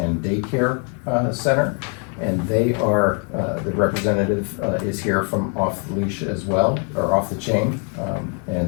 and Daycare Center, and they are, the representative is here from Off the Leash as well, or Off the Chain,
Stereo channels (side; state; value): right; quieter; 39.0 dB